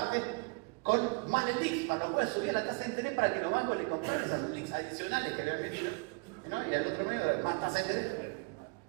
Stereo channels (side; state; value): left; quieter; 31.2 dB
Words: con más LELIC, para lo cual subía la tasa de interés para que los bancos le compraran esas LELIC adicionales que habían metido, ¿no? Y al otro mes más tasa de interés.